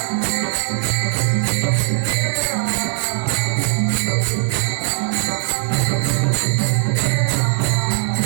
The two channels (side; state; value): left; silent; digital silence